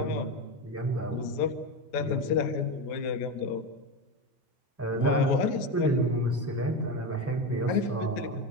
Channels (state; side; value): normal; both; correlation 0.16